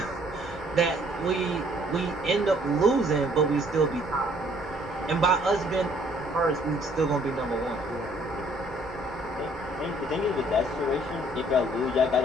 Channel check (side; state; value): both; normal; correlation 0.62